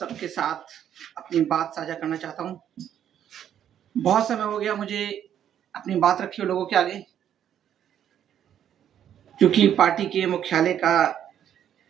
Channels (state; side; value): quieter; left; 9.9 dB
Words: साथ अपनी बात साझा करना चाहता हूँ। बहुत समय हो गया मुझे अपनी बात रखी हो लोगों के आगे, क्योंकि पार्टी के मुख्यालय का